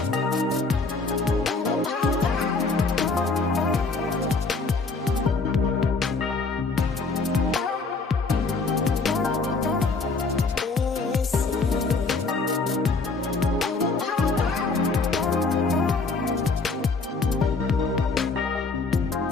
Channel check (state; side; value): quieter; right; 4.0 dB